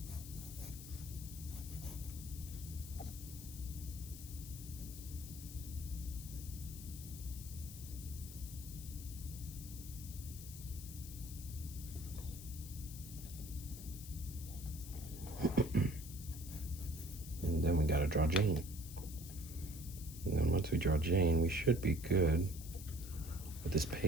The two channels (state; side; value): noise; left; hiss, 12 dB below the sound